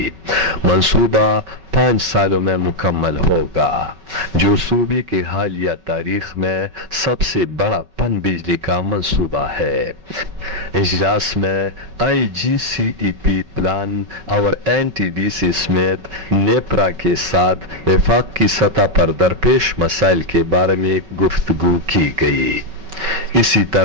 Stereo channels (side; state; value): left; late; 5.3 ms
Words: منصوبہ 5 سالوں میں مکمل ہوگا، جو صوبے کے حالیہ تاریخ میں سب سے بڑا پن بجلی کا منصوبہ ہے۔ اجلاس میں IGCEP پلان اور NTDC سمیت نیپرا کے ساتھ وفاق کی سطح پر درپیش مسائل کے بارے میں گفتگو کی گئی۔ اسی